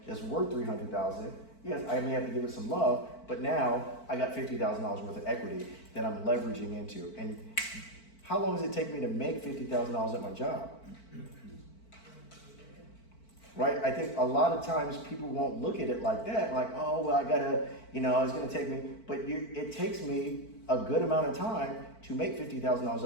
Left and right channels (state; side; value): late; right; 4.5 ms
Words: that's worth $300,000. Yes, I may have to give it some love, but now I got $50,000 worth of equity that I'm leveraging into. And how long does it take me to make $50,000 at my job? Right? I think a lot of times people won't look at it like that, like, oh, well, I gotta, it's gonna take me, but it takes me a good amount of time to make $50,000